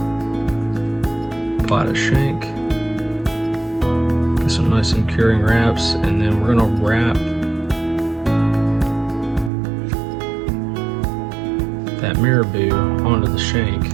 apply to shank, get some nice and curing wraps, and then we're going to wrap that marabou onto the shank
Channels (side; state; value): left; drops out; at 9.5 s